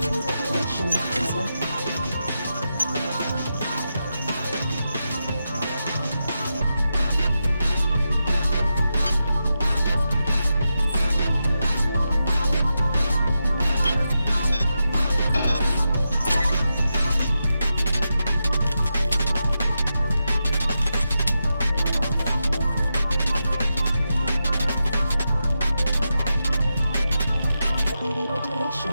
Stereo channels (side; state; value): both; inverted; correlation -0.89